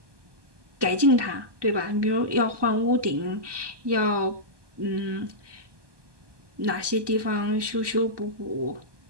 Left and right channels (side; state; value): left; late; 1.2 ms